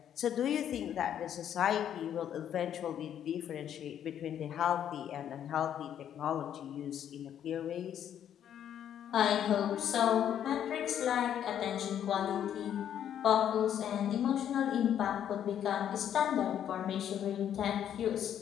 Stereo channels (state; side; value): quieter; right; 9.8 dB